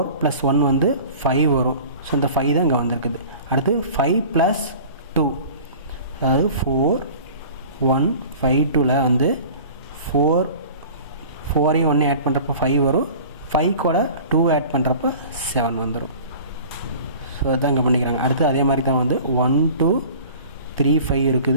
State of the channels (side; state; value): both; inverted; correlation -0.42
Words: + 1 வந்து 5 வரும். ஸோ இந்த 5 தான் இங்கே வந்திருக்குது. அடுத்து 5 + 2, அதாவது 4 1 5 2ல் வந்து 4ஐயும் 1 ஆட் பண்ணுறப்ப 5 வரும். 5 கூட 2 ஆட் பண்ணுறப்ப 7 வந்துடும். ஸோ அதுதான் இங்கே பண்ணிக்கிறாங்க. அடுத்து அதே மாதிரி தான் வந்து 1 2 3 5